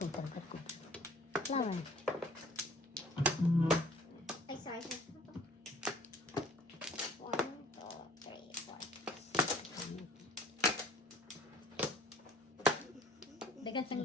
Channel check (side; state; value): both; normal; correlation 0.51